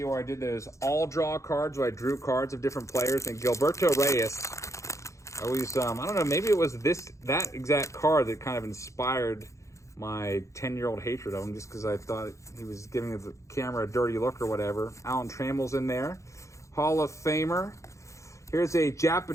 where I did those all-draw cards, where I drew cards of different players. And Gilberto Reyes, always, I don't know, maybe it was that exact card that kind of inspired my 10-year-old hatred of him, just because I thought he was giving the camera a dirty look or whatever. Alan Trammell's in there. Hall of Famer. Here's a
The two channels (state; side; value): late; right; 0.15 ms